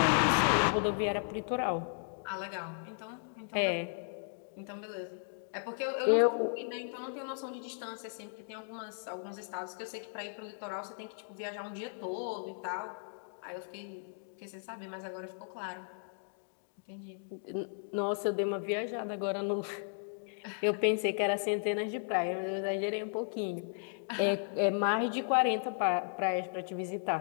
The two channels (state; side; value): silent; right; digital silence